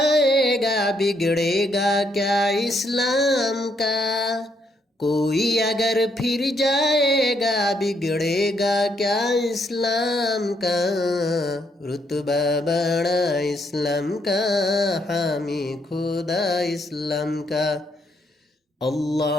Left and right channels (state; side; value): normal; both; correlation 0.74